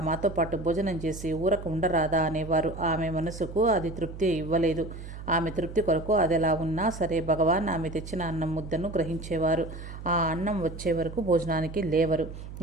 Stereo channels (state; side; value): noise; right; hum, 11 dB below the sound